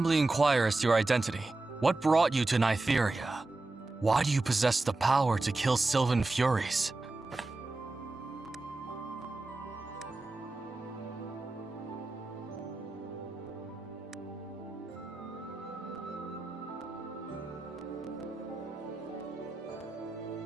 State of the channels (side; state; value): left; quieter; 3.1 dB